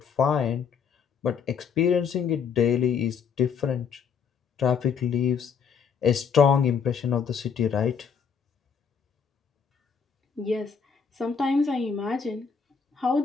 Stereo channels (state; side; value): quieter; right; 6.5 dB